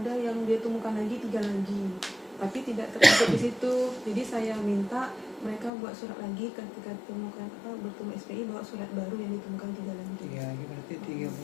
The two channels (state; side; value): drops out; right; at 5.7 s